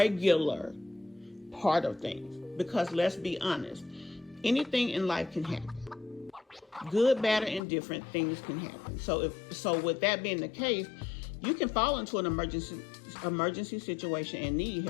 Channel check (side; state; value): right; drops out; at 7.6 s